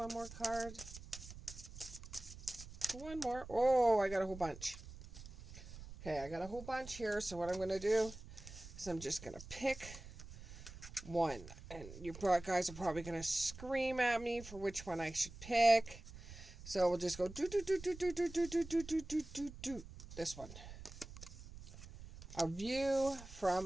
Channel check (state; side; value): noise; right; rumble, 14 dB below the sound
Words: more card. One more. Oh, I got a whole bunch. Okay, I got a whole bunch here. So what I'm going to do is I'm just going to pick one. And you guys are probably going to scream at me for which one I should pick. So we'll just go do. This one. A view